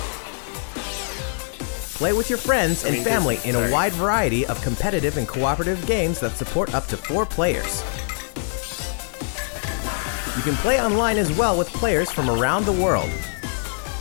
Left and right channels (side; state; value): right; silent; digital silence